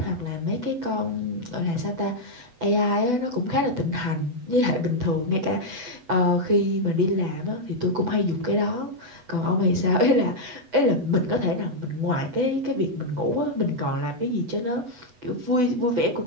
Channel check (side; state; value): left; late; 8.1 ms